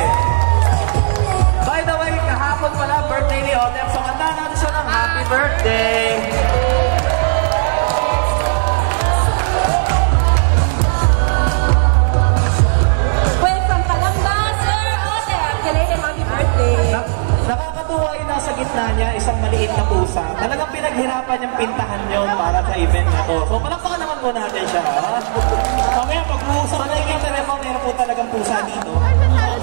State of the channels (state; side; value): silent; left; digital silence